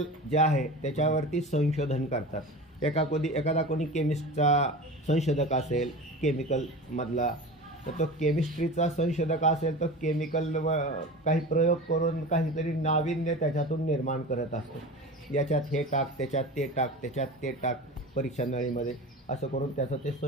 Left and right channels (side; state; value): both; normal; correlation 0.32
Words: जे आहे त्याच्यावरती संशोधन करतात. एखादा कोणी केमिस्टचा संशोधक असेल केमिकलमधला, तर तो केमिस्ट्रीचा संशोधक असेल तर केमिकल काही प्रयोग करून काहीतरी नाविन्य त्याच्यातून निर्माण करत असतो. याच्यात हे टाक, त्याच्यात ते टाक, त्याच्यात ते टाक, परीक्षा नळीमध्ये असं करून त्याचं ते